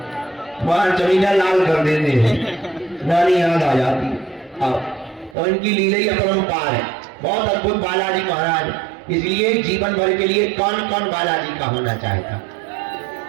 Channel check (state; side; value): drops out; left; at 5.4 s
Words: वहां जमीना लाल कर देते हैं, नानी याद आ जाती है। और इनकी लीला ही अपरंपार है, बहुत अद्भुत बालाजी महाराज। इसलिए जीवन भर के लिए कौन कौन बालाजी का होना चाहता?